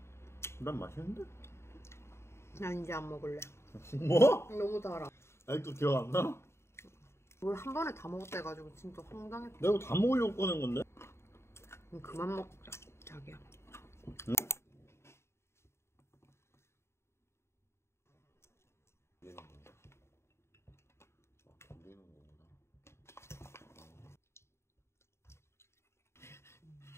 난 맛있는데? 나 이제 안 먹을래. 뭐? 너무 달아. 아직도 기억 안 나? 이걸 한 번에 다 먹었다 해가지고 진짜 황당했다. 내가 다 먹으려고 꺼낸 건데? 그만 먹자 자기야. 응?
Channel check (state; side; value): late; right; 0.13 ms